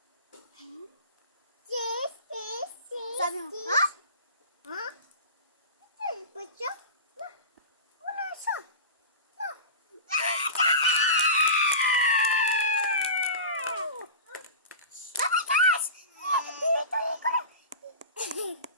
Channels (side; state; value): both; inverted; correlation -0.31